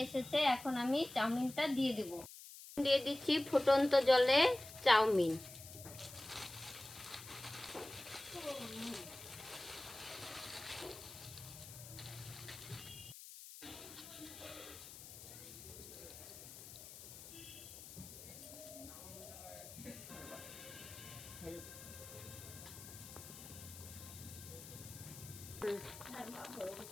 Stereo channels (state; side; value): noise; left; hiss, 14 dB below the sound